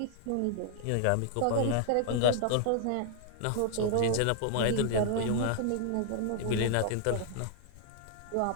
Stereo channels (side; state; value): both; different; correlation -0.01